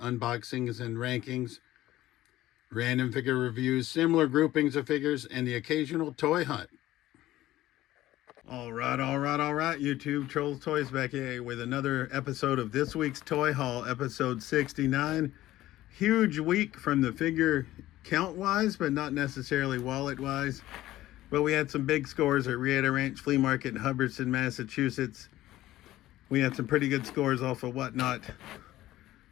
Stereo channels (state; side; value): quieter; right; 15.3 dB